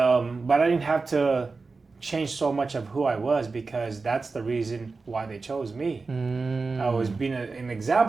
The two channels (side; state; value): left; quieter; 4.1 dB